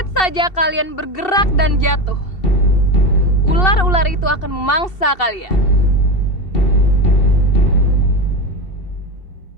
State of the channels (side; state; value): right; late; 2.7 ms